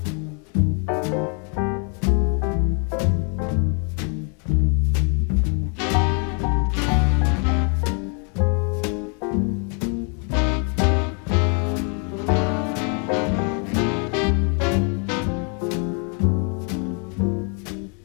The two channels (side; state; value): right; quieter; 38.7 dB